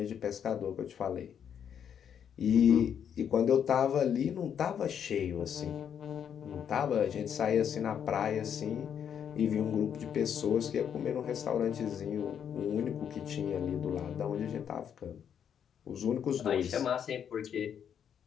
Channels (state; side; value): quieter; right; 8.4 dB